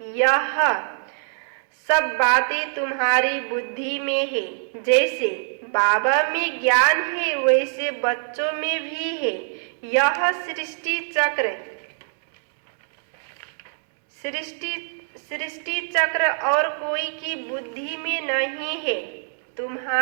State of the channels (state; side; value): silent; left; digital silence